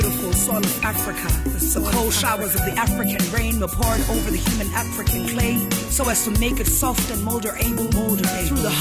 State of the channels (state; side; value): identical; both; correlation 1.00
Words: soil of Africa, the cold showers of the African rain were poured over the human African clay, so as to make it soft and moldable. Through the